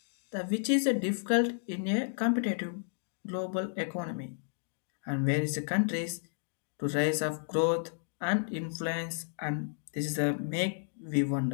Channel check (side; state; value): right; silent; digital silence